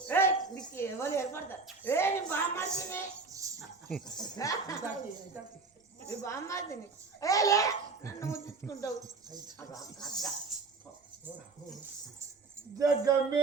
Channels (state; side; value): quieter; left; 4.2 dB